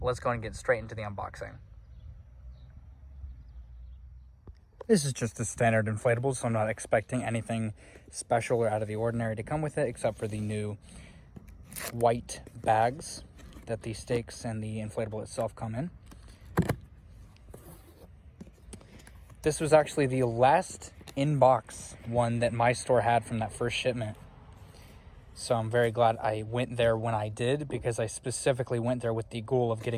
go and get straight into the unboxing. This is just a standard inflatable, so I'm not expecting anything special or out of the ordinary to come with it, except for the new white bags that the stakes and the inflatable itself come in. This was actually the last in-box one that my store had from that first shipment. So I'm very glad I went there when I did, because I specifically went there with the goal of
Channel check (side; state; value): both; identical; correlation 1.00